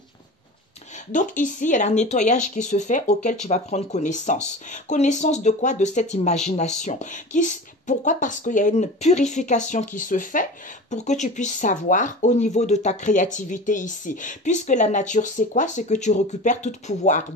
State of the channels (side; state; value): both; normal; correlation 0.34